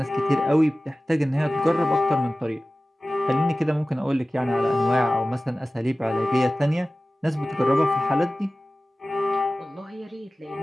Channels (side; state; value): both; normal; correlation 0.96